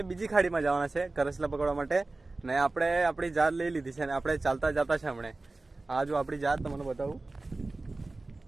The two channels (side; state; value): left; quieter; 3.2 dB